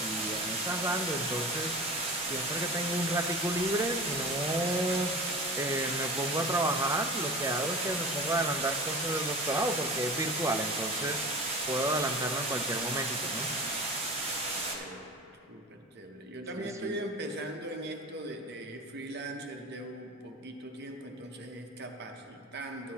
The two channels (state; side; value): normal; both; correlation 0.35